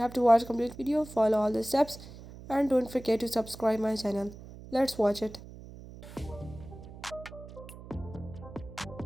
to watch complete video, follow all the steps, and don't forget to subscribe my channel. Let's watch it.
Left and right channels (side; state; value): right; noise; hum, 15 dB below the sound